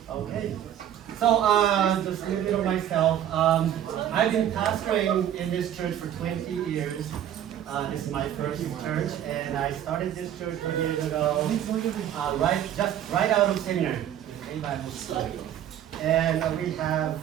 Okay. So just a little bit of myself. I've been pastoring in this church for 20 years. This is my first church, and I started this church 20 years ago, right out of seminary, in Bible school. And we have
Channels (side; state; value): left; quieter; 10.8 dB